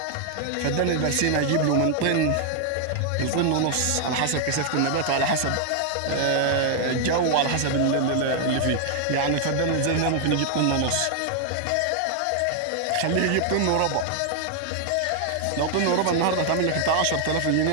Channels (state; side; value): different; both; correlation 0.00